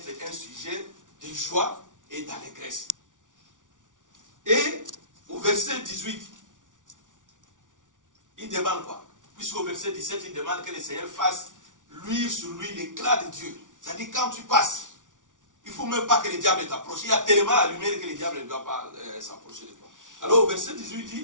un sujet de joie et d'allégresse. Et au verset 18, il demande quoi? Puisqu'au verset 17, il demande que le Seigneur fasse luire sur lui l'éclat de Dieu. C'est-à-dire quand tu passes, il ne faut même pas que le diable t'approche. Il y a tellement la lumière que le diable ne doit pas s'approcher de toi. Alors au verset 18, il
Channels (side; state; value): left; late; 0.87 ms